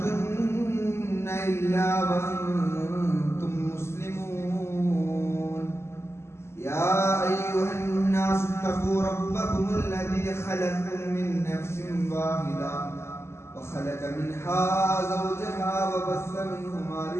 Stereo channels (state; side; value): late; right; 0.13 ms